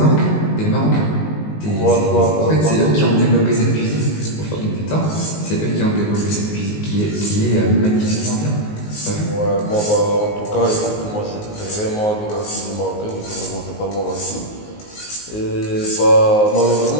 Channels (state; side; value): late; right; 19 ms